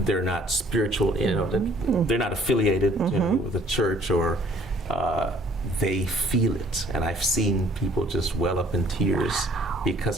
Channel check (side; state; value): both; normal; correlation 0.58